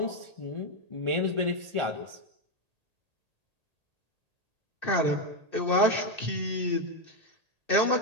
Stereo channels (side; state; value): left; late; 1.8 ms